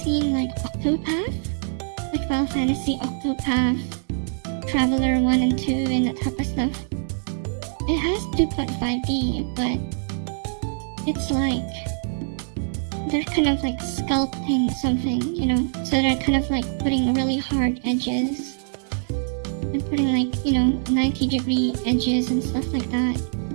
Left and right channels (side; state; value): left; silent; digital silence